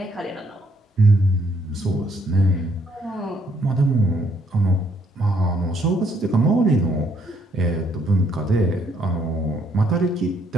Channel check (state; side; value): normal; both; correlation 0.69